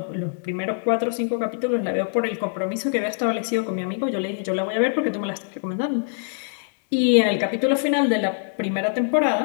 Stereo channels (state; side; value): silent; right; digital silence